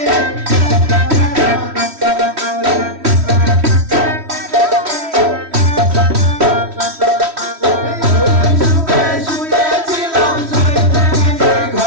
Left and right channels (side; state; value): left; late; 3.1 ms